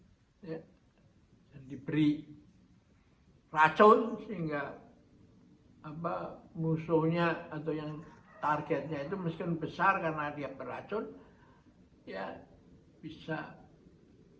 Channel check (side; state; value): both; identical; correlation 1.00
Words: Ya. Dan diberi racun sehingga musuhnya atau yang targetnya itu meskipun besar karena dia beracun, ya bisa